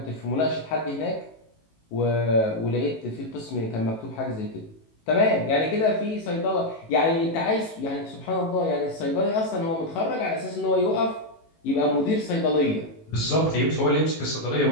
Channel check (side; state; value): right; late; 18 ms